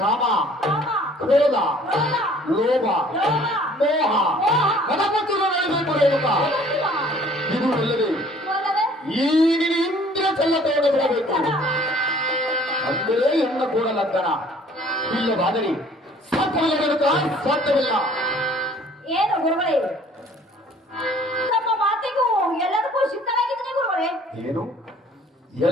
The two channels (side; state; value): both; normal; correlation 0.54